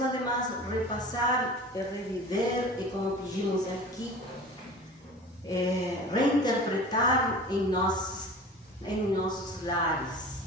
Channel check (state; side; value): normal; both; correlation 0.39